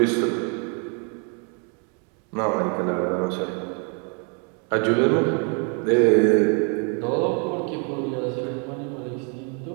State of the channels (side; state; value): left; quieter; 37.6 dB